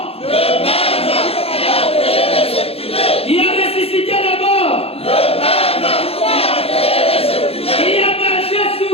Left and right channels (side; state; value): right; late; 0.28 ms